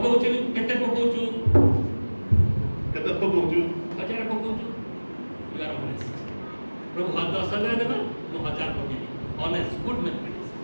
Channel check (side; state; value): both; inverted; correlation -1.00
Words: କେତେ ପକଉଛୁ କେତେ ପକଉଛୁ 1000 ପକଉଛୁ you are honest ପ୍ରଭୁ 10,000 ଦେବା ମୁଁ 1000 ପକେଇବି honest good mathematics